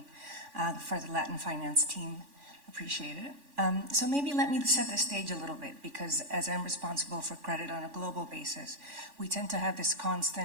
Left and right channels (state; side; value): late; left; 3.5 ms